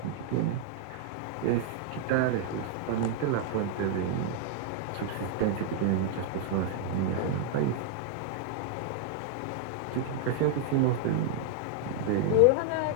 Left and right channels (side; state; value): both; different; correlation 0.00